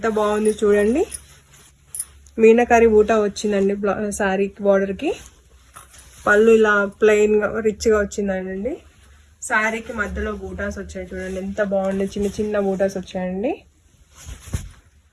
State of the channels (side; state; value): both; identical; correlation 1.00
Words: బాగుంది చూడండి. మీనకారి బూటా వచ్చిందండి శారీకి బార్డర్కి. పళ్ళు ఇలా ప్లెయిన్గా రిచ్గా వచ్చిందండి. శారీకి మధ్యలో బూటాస్ వచ్చాయి చూడండి, ఎంత బాగుంది. చిన్న చిన్న బూటాస్ వచ్చాయండి.